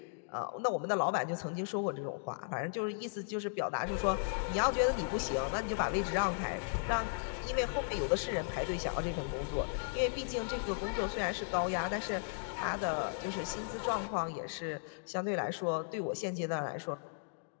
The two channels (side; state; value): right; silent; digital silence